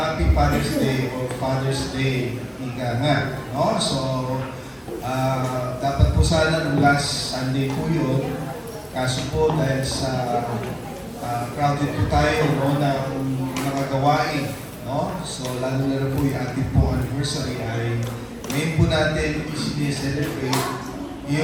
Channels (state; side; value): identical; both; correlation 1.00